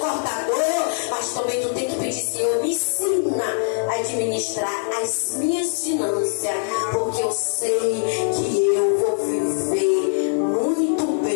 mas também tu tem que pedir, Senhor, me ensina a administrar as minhas finanças, porque eu sei que eu vou viver muito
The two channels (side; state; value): right; silent; digital silence